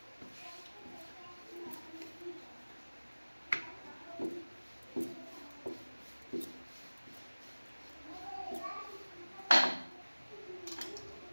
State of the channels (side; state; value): both; inverted; correlation -1.00